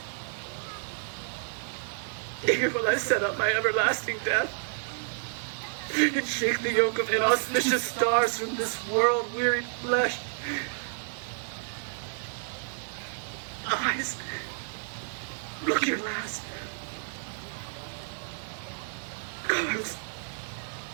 Here will I set up my everlasting death, and shake the yoke of inauspicious stars from this world-wearied flesh. Eyes, look your last. Arms,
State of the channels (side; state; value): left; silent; 58 dB below the other